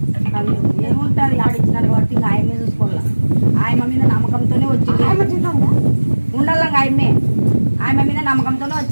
ఏముంటుంది ఆడిచ్చినారు కాబట్టి ఇంకా ఆయమ్మే చూసుకోవాలా. ఆయమ్మ మీద నమ్మకంతోనే వచ్చింది. ఉండాలి ఆయమ్మ మీద నమ్మకంతోనే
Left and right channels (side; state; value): both; inverted; correlation -1.00